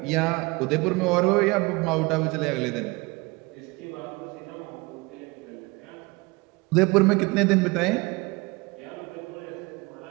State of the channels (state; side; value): quieter; left; 24.9 dB